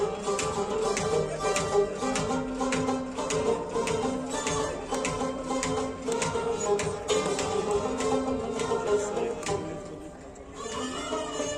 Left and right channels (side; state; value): both; identical; correlation 1.00